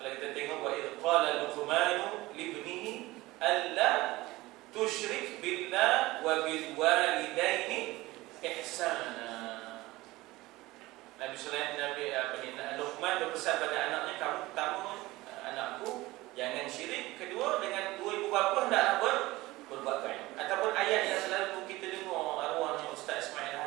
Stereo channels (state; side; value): quieter; left; 19.4 dB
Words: kita tengok wa idh qala Luqmanu libnihi alla tusyrik billah wa bil walidaini ihsana. Nabi Luqman berpesan pada anaknya, kamu pertama anakku jangan syirik, kedua dengan dua ibu bapa hendaklah berbuat baik. Ataupun ayat yang selalu kita dengar arwahnya Ustaz Ismail